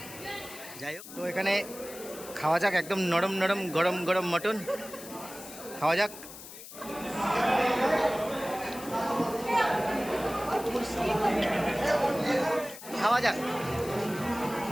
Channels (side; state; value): left; noise; hiss, 14 dB below the sound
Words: যাই হোক, তো এখানে খাওয়া যাক, একদম নরম নরম গরম গরম মটন খাওয়া যাক। খাওয়া যাক,